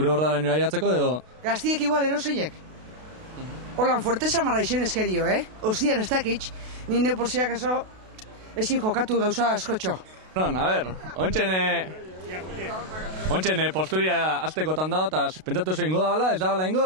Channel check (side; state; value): left; late; 32 ms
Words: hordara nire aiatzeko edo? Gaztiek igual eroseiek. Holan, fuerteza marra izen eskerio, Ostian ez dakitx, nire porziak eso ezin jokatu gauza askotxo. Non, a ber, ontsen posturia aztekotan dago, eta pentsatuzu ingo da bala, ez da bala ingo